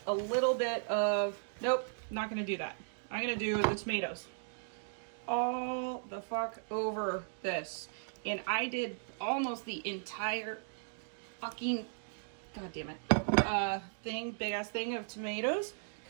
a little bit of, nope, not gonna do that. I'm gonna do the tomatoes all the fuck over this. And I did almost the entire fucking, god damn it, big ass thing of tomatoes,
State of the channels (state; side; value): silent; left; digital silence